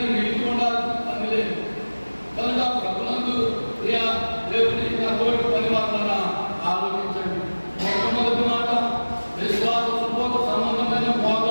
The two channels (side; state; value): both; inverted; correlation -1.00